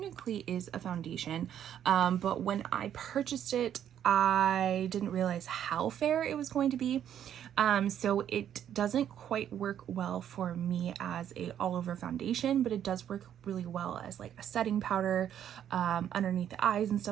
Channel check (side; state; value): left; quieter; 10.0 dB